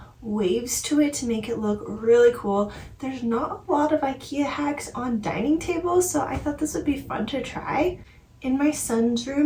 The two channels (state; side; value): identical; both; correlation 1.00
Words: waves to it to make it look really cool. There's not a lot of Ikea hacks on dining tables, so I thought this would be fun to try. In my son's